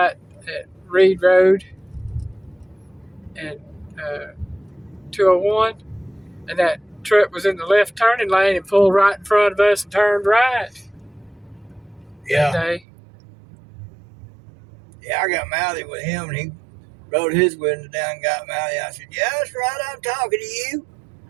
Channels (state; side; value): drops out; left; at 12.9 s